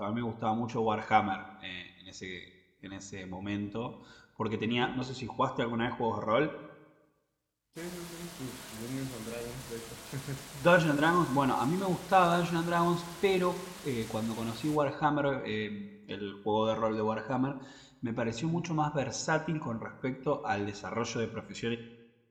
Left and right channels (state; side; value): identical; both; correlation 1.00